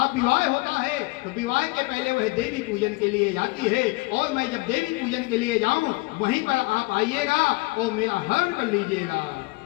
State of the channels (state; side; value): quieter; right; 24.6 dB